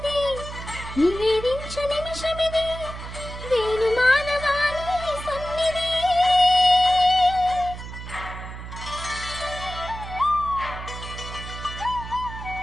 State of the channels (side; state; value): right; noise; hum, 10 dB below the sound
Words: నివేదించు నిమిషమిది, వేణు మానవాళి సన్నిధి.